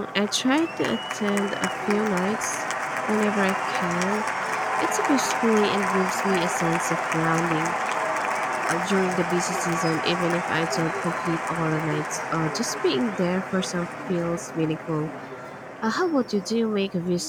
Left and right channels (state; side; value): identical; both; correlation 1.00